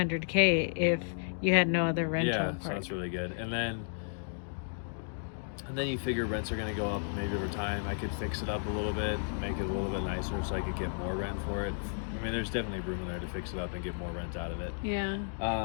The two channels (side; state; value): right; silent; digital silence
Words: if you had no other rental. Yeah, part. so that's really good. And then you figure rents are going to go up maybe over time. I could fix it up a little bit, make it a little bit nicer so I could get more rent for it. I mean, there's definitely room in there to fix it up and get more rent out of it. Yeah.